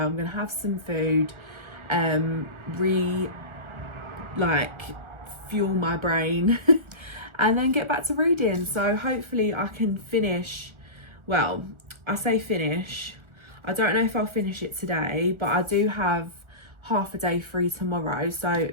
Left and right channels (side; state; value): left; late; 1.4 ms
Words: gonna have some food, fuel my brain and then get back to reading. So hopefully I can finish, well, I say finish, I don't know if I'll finish it today, but I do have half a day free tomorrow, so